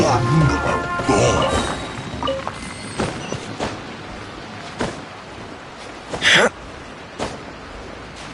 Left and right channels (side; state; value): both; identical; correlation 1.00